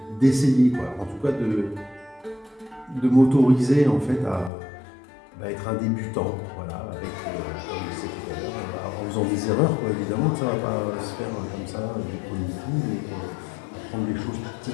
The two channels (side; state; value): right; drops out; at 4.5 s